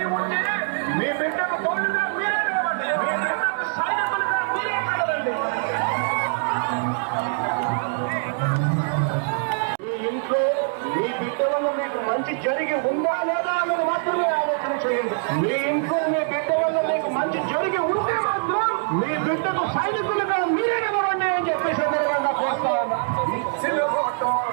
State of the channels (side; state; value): left; silent; digital silence